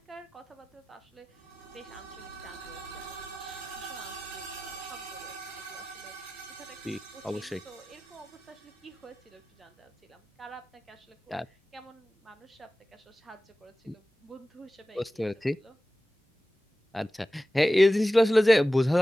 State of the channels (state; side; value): normal; both; correlation 0.95